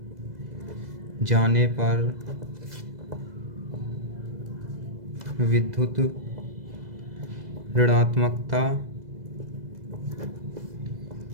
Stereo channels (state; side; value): late; left; 2.0 ms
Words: जाने पर विद्युत ऋणात्मकता